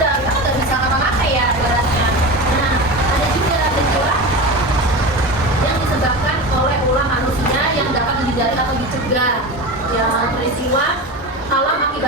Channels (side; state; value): both; normal; correlation 0.26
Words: kita nggak bisa ngapa-ngapain ya ibaratnya. Nah, ada juga peristiwa yang disebabkan oleh ulah manusia yang dapat dihindari atau dicegah. Ya, peristiwa alam